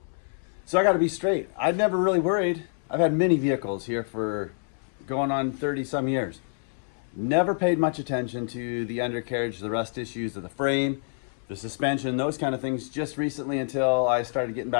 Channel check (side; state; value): right; silent; 59 dB below the other